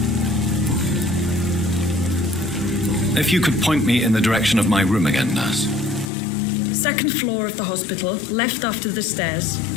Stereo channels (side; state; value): right; drops out; at 6.1 s